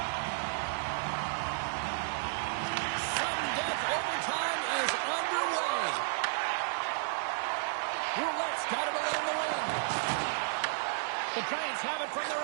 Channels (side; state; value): left; silent; digital silence